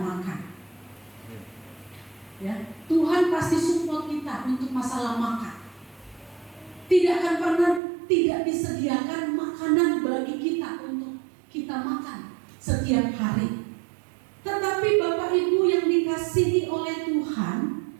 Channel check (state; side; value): drops out; left; at 7.8 s